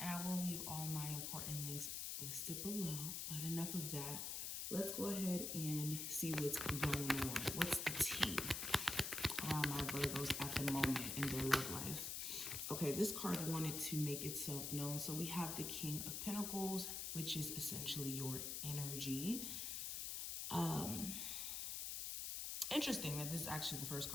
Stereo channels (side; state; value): left; noise; hiss, 3 dB below the sound